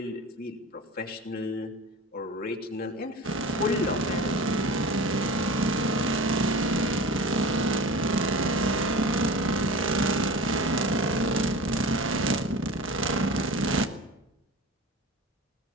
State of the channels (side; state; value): both; normal; correlation 0.34